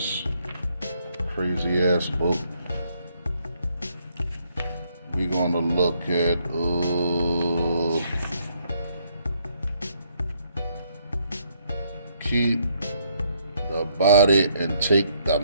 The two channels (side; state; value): both; inverted; correlation -0.70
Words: crazy ass book. We're gonna look at keep the body and take the